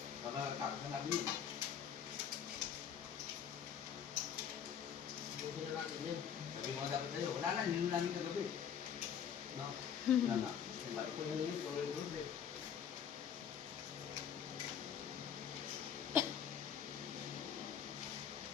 Kakatapos na natin yun. Buti na natin yan. Sabi mo dapat tayo, wala na, hindi namin kagabi. No? Wala na. Ito na yun, tuloy-tuloy eh.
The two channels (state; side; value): quieter; right; 8.3 dB